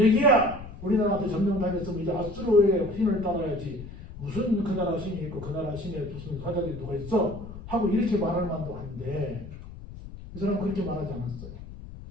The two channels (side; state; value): left; noise; rumble, 13 dB below the sound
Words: 우리나라한테 점령당했으면 이제 아수르의 신을 따라야지. 무슨 그 나라 신이 있고 그 나라 신에 무슨 사자들이 누가 있어? 하고 이렇게 말할 만도 한데 이 사람은 그렇게 말하지 않았어요.